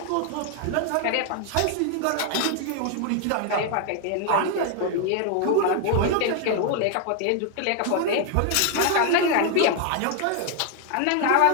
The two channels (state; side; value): different; both; correlation 0.00